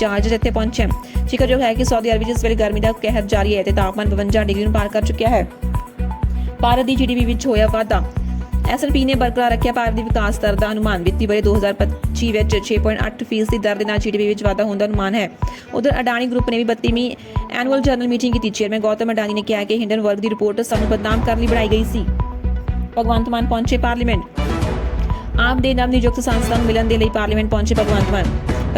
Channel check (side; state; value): both; identical; correlation 1.00